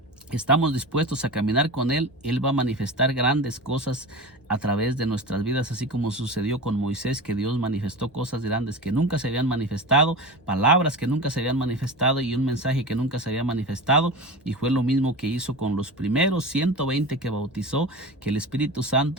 estamos dispuestos a caminar con Él, Él va a manifestar grandes cosas a través de nuestras vidas, así como sucedió con Moisés, que Dios manifestó cosas grandes que nunca se habían manifestado, palabras que nunca se habían manifestado y un mensaje que nunca se había manifestado. Y fue lo mismo que hizo con los primeros 120 que bautizó, que el Espíritu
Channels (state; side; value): normal; both; correlation 0.28